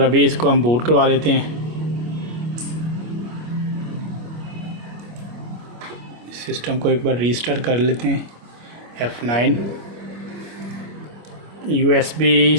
इसको हम बूट करवा लेते हैं। सिस्टम को एक बार रीस्टार्ट कर लेते हैं। F9 USB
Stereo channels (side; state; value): left; late; 25 ms